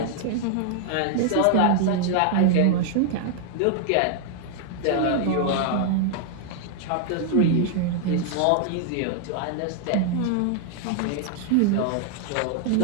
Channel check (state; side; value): different; both; correlation 0.00